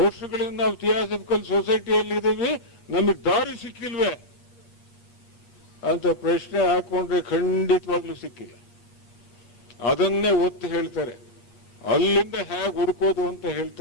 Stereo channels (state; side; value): late; right; 8.3 ms